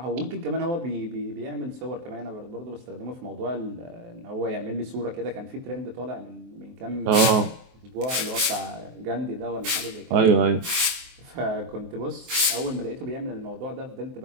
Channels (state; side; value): late; left; 23 ms